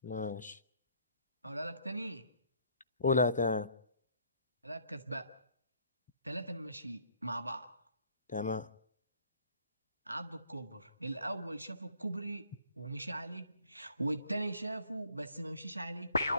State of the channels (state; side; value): inverted; both; correlation -0.60